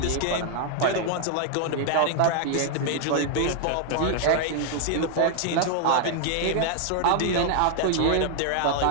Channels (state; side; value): different; both; correlation 0.00